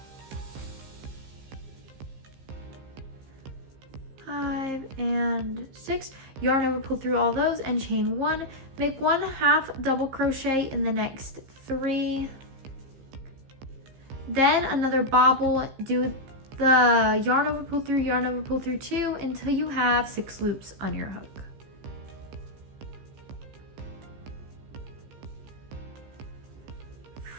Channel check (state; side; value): late; left; 15 ms